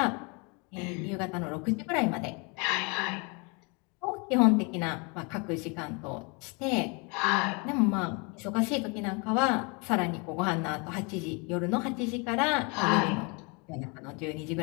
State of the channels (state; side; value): quieter; right; 31.6 dB